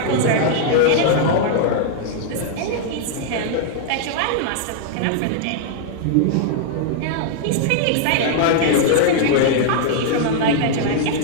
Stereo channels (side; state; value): both; different; correlation -0.01